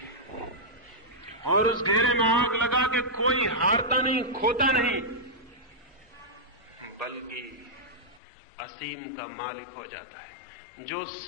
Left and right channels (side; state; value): right; drops out; at 8.2 s